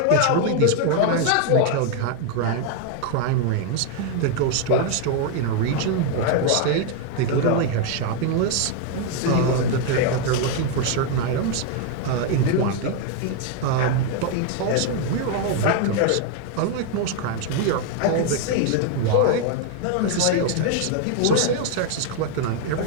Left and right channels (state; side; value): different; both; correlation 0.01